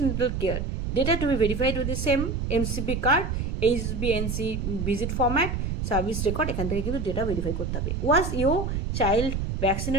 natal care data to be verified with the same MCP card, HbNc visit format, service record, এখান থেকে কিন্তু ডেটা ভেরিফাই করতে হবে। Was your child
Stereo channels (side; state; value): right; noise; rumble, 2 dB below the sound